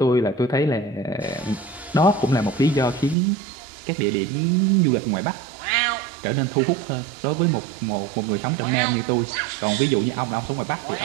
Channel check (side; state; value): left; drops out; at 3.2 s